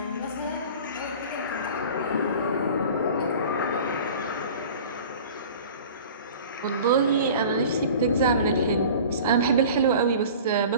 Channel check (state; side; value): inverted; both; correlation -0.41